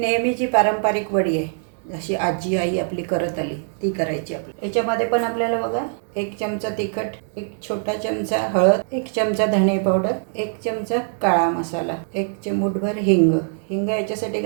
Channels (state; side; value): silent; left; 64 dB below the other